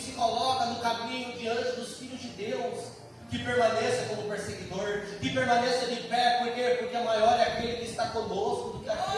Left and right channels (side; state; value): both; identical; correlation 1.00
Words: coloca no caminho diante dos filhos de Deus, que permaneça como perseguidor, que permaneça de pé. Por quê? Porque maior é aquele que está conosco do que